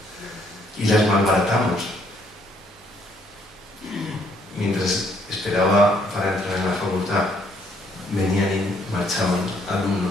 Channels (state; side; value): normal; both; correlation 0.67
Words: Y las malbaratamos. Mientras esperaba para entrar en la facultad, venían y marchaban